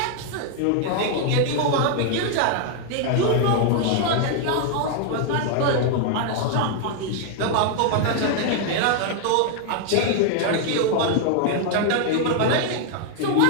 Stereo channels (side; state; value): both; different; correlation 0.00